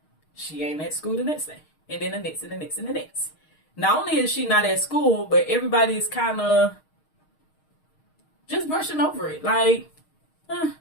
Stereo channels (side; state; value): right; late; 6.4 ms